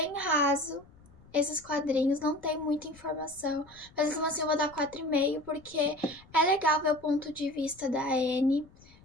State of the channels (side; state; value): left; noise; rumble, 25 dB below the sound